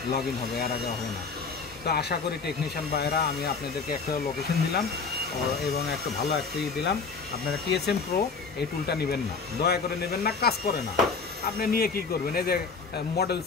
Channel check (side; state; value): right; quieter; 4.8 dB